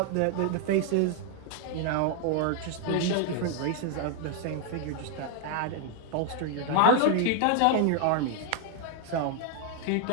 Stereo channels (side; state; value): both; different; correlation 0.00